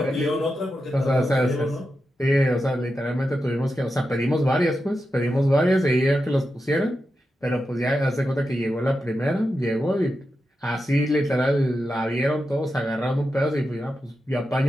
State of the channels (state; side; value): normal; both; correlation 0.89